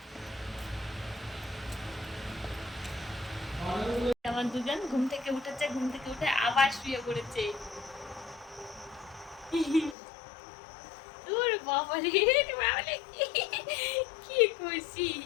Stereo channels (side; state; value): right; drops out; at 10.0 s